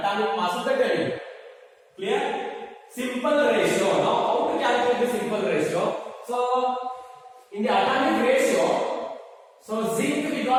mass of the element. Clear? Simple ratio. Now how to calculate the simple ratio? So in the atomic ratio, so zinc we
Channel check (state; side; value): identical; both; correlation 1.00